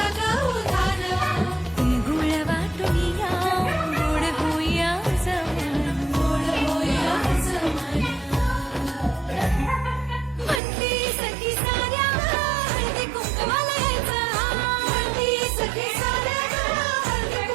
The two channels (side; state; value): left; drops out; at 10.6 s